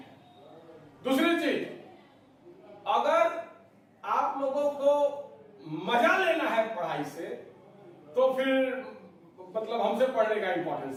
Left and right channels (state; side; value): identical; both; correlation 1.00